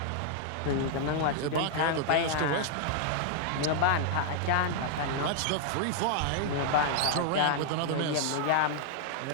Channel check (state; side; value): different; both; correlation -0.01